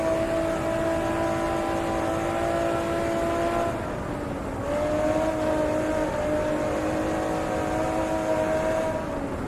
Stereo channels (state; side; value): identical; both; correlation 1.00